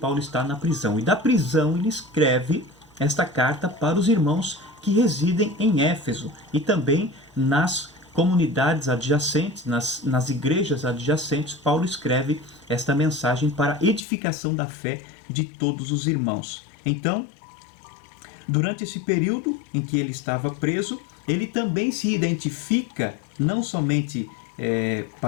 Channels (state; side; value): drops out; right; at 14.0 s